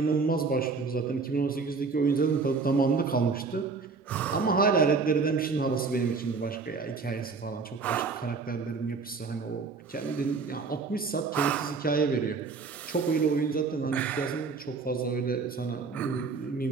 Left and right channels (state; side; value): quieter; left; 4.6 dB